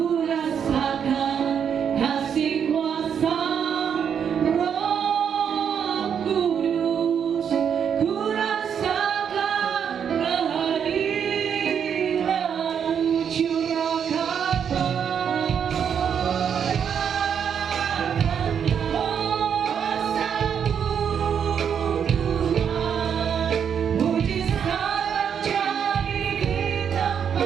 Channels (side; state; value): left; quieter; 7.8 dB